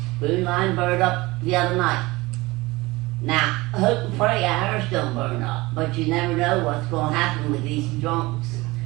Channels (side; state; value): left; quieter; 21.5 dB